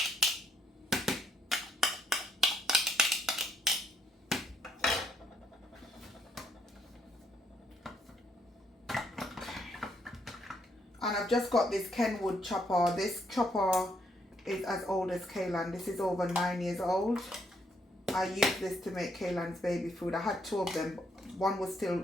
And I've just got this Kenwood chopper. This chopper is as old as Kaylan. This is over 9 years old. I used this to make Kaylan's baby food. I had 2 of them. One was still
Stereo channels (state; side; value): normal; both; correlation 0.73